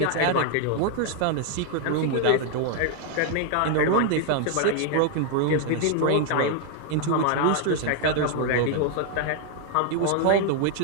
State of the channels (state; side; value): different; both; correlation 0.00